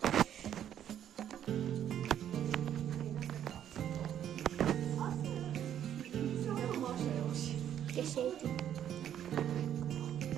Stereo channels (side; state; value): left; quieter; 10.2 dB